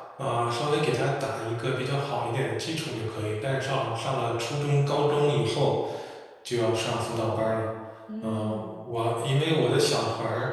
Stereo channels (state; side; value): identical; both; correlation 1.00